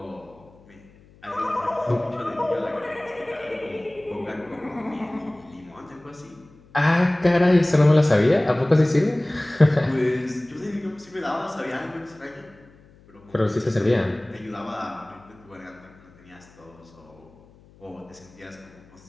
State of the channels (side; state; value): left; noise; hum, 27 dB below the sound